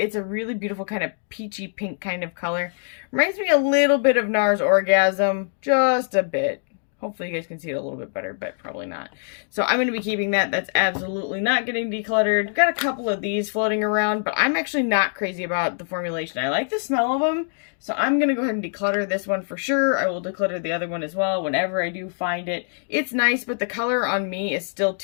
a really beautiful kind of peachy pink kind of color. Reminds me a little bit of NARS Orgasm, just a bit. Hopefully you guys can see it a little bit better, but probably not. So I'm going to be keeping that. That's absolutely not getting decluttered. I've got a couple of these floating around, but I'm actually not crazy about the formulation. I like the smell of them, so I'm going to go ahead and declutter this one for sure. I will declutter the other one as well whenever I do find it. It's nice, but the color on me is still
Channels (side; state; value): right; silent; 63 dB below the other